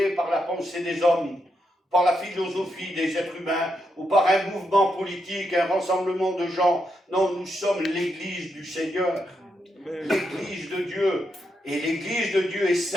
par la pensée des hommes, par la philosophie des êtres humains, ou par un mouvement politique, un rassemblement de gens. Non, nous sommes l'Église du Seigneur, l'Église de Dieu. Et l'Église de Dieu est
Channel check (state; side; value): normal; both; correlation 0.82